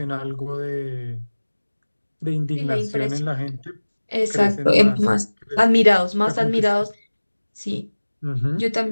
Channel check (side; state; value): both; inverted; correlation -1.00